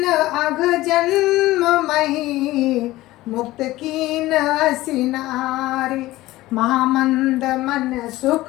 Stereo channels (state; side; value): quieter; right; 17.4 dB